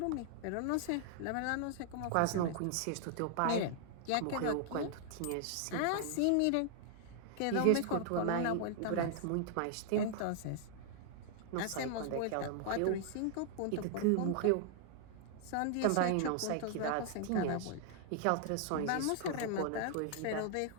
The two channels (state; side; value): different; both; correlation 0.00